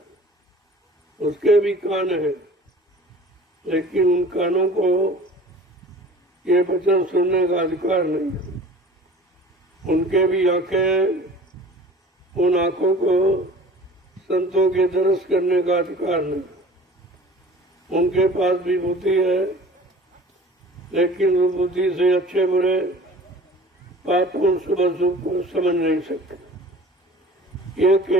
उसके भी कान हैं, लेकिन उन कानों को ये वचन सुनने का अधिकार नहीं है। उनके भी आंखें, उन आंखों को संतों के दर्श करने का अधिकार नहीं। उनके पास भी बुद्धि है, लेकिन वो बुद्धि से अच्छे बुरे पाप और शुभ अशुभ को समझ नहीं सकते। ये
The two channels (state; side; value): normal; both; correlation 0.43